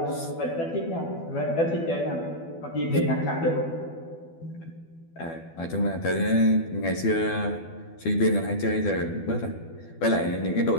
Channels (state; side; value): late; right; 12 ms